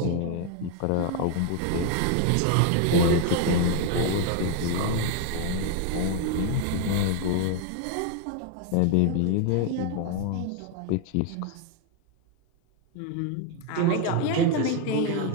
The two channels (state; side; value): different; both; correlation 0.01